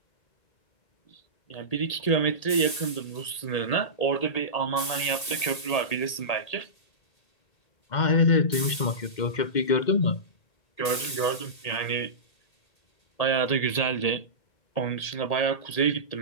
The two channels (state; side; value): late; right; 1.8 ms